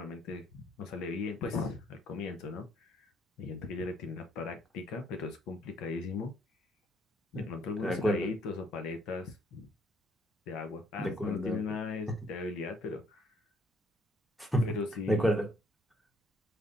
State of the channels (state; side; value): normal; both; correlation 0.66